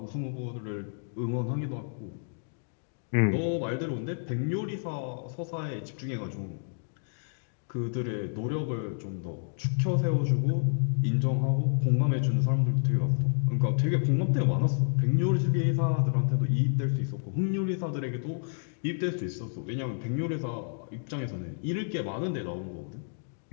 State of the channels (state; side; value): silent; right; digital silence